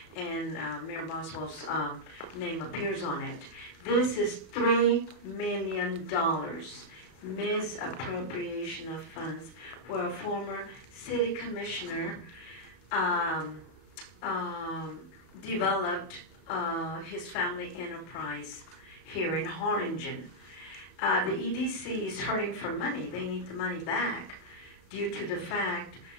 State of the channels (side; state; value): right; late; 32 ms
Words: and Mayor Boswell's name appears on it. This is $3 million misappropriation of funds, where a former city commissioner developed his family enterprise here in Harlingen. The EDC is hurting for money. They need the money back due to the fact